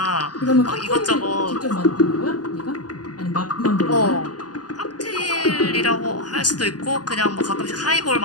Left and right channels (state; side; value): late; right; 0.69 ms